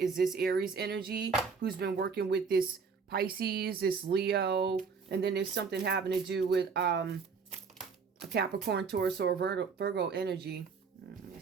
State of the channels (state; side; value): quieter; left; 5.4 dB